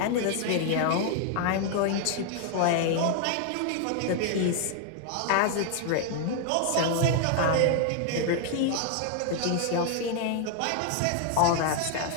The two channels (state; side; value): different; both; correlation 0.00